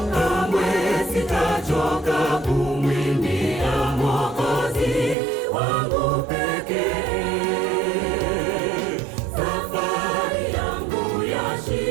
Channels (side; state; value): left; drops out; at 5.2 s